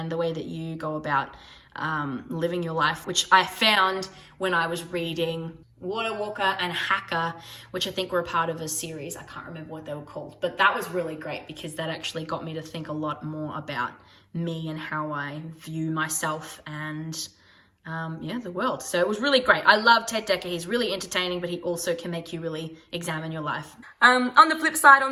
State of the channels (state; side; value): identical; both; correlation 1.00